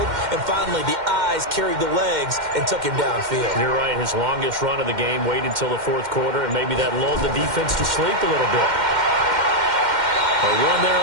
And finally, the eyes carried the legs and took him downfield. You're right. His longest run of the game, waited until the fourth quarter, and maybe that lulled the defense to sleep a little bit. A run there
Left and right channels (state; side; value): late; left; 2.1 ms